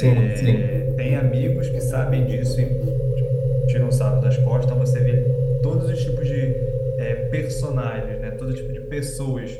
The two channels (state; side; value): identical; both; correlation 1.00